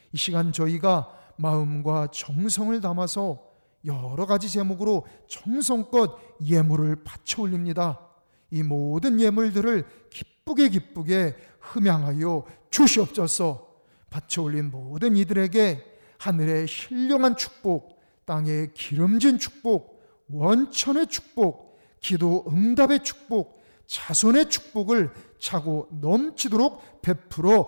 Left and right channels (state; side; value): inverted; both; correlation -1.00